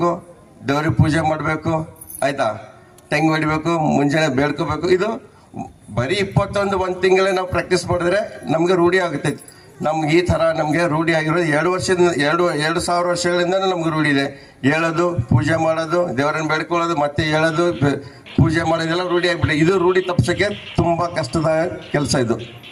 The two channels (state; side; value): identical; both; correlation 1.00